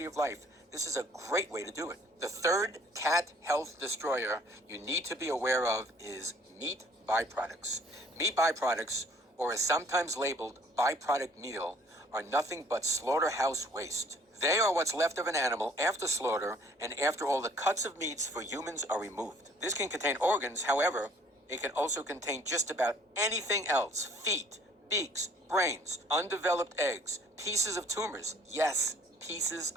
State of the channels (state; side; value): normal; both; correlation 0.57